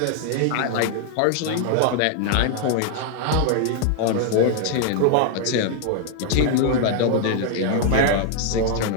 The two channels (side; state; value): both; different; correlation 0.00